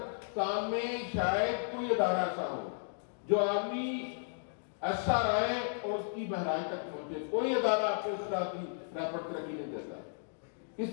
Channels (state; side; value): silent; right; digital silence